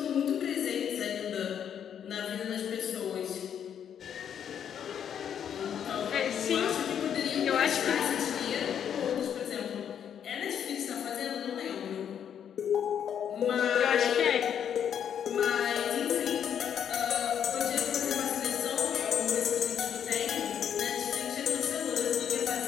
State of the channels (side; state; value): right; quieter; 8.7 dB